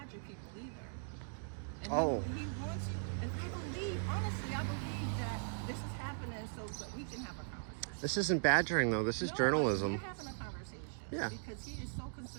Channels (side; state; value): left; silent; digital silence